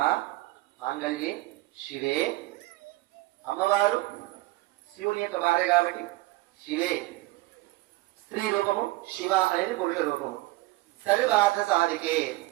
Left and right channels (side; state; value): left; quieter; 19.8 dB